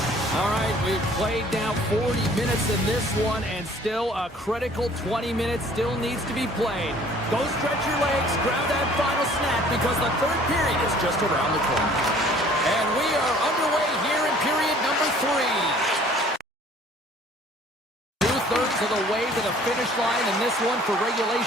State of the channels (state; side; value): normal; both; correlation 0.54